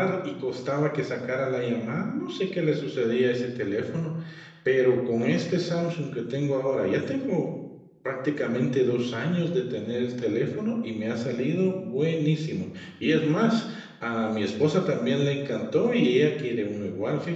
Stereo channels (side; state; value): both; identical; correlation 1.00